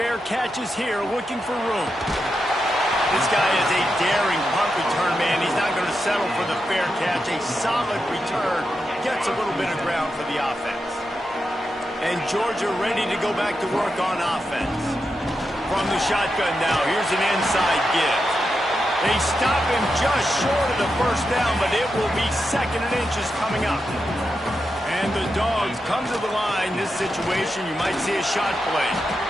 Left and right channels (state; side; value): normal; both; correlation 0.87